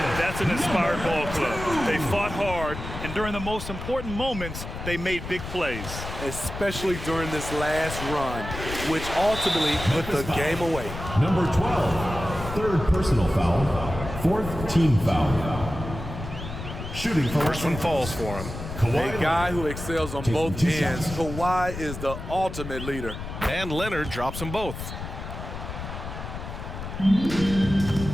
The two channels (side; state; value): left; noise; rumble, 8 dB below the sound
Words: That's an inspired ball club. They fought hard, and during the most important moments, they made big plays. Especially during this last run, which ultimately put the game away. Number 12. third personal foul, fourth team foul. Shooting for First one falls for him. A guy who excels on both ends. Kawhi is the ultimate leader. And Leonard drops them both.